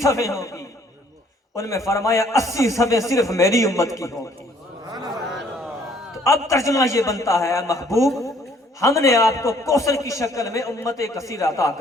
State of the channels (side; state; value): both; normal; correlation 0.62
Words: صفیں ہوگی، ان میں فرمایا 80 صفیں صرف میری امت کی ہوگی. اب ترجمہ یہ بنتا ہے اے محبوب ہم نے آپ کو کوثر کی شکل میں امت کثیر عطا